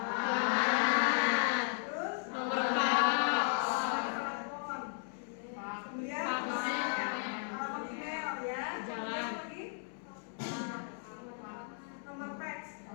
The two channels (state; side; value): silent; right; 54 dB below the other